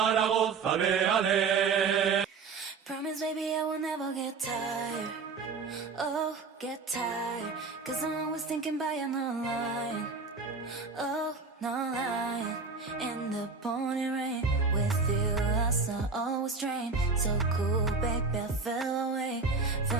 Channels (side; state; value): left; quieter; 4.5 dB